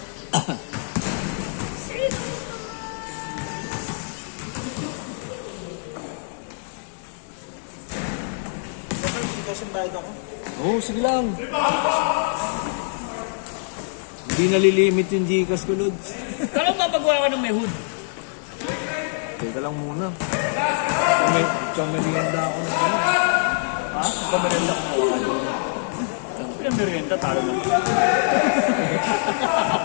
Kasi bayad ako. Oo, sige lang. Hindi nalilimit yung Gcash ko, Lods. Kala mo mapagawa ka ng may hood. Teka lang muna. May merienda ako na ano. Ha? Pagkamerenda ko mo ka doon. Pagkamerenda, talo na.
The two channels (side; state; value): right; silent; digital silence